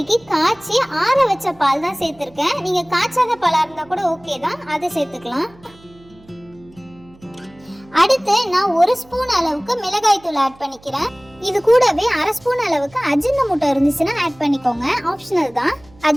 காய்ச்சி ஆற வச்ச பால் தான் சேர்த்திருக்கேன். நீங்க காய்ச்சாத பாலா இருந்தா கூட ஓகே தான், அதை சேர்த்துக்கலாம். அடுத்து நான் 1 ஸ்பூன் அளவுக்கு மிளகாய் தூள் ஆட் பண்ணிக்கிறேன். இது கூடவே 1/2 ஸ்பூன் அளவுக்கு அஜினமோட்டோ இருந்துச்சுன்னா ஆட் பண்ணிக்கோங்க, ஆப்ஷனல் தான்.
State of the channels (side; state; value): right; noise; hum, 26 dB below the sound